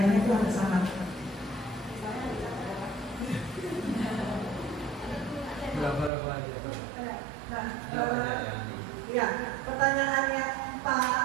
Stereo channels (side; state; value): left; drops out; at 6.1 s